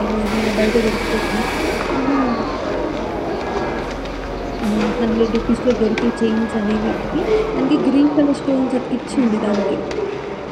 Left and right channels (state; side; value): identical; both; correlation 1.00